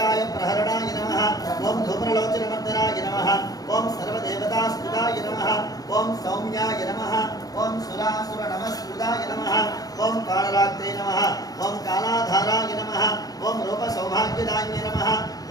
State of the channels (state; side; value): late; right; 0.18 ms